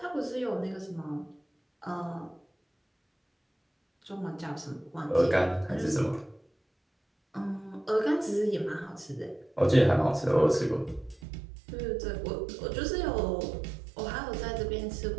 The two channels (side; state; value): left; drops out; at 11.2 s